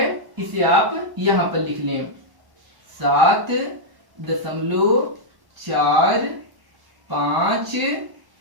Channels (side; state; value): left; late; 1.1 ms